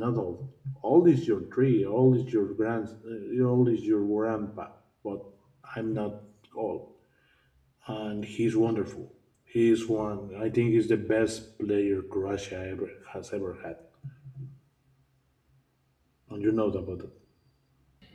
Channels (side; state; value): both; identical; correlation 1.00